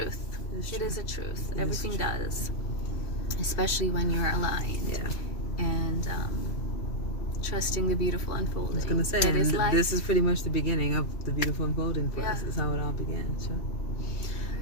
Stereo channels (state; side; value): late; right; 2.7 ms